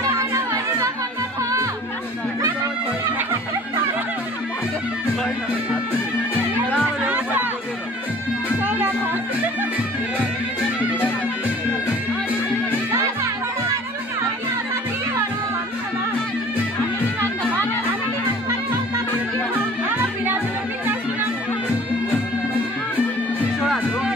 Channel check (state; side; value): normal; both; correlation 0.48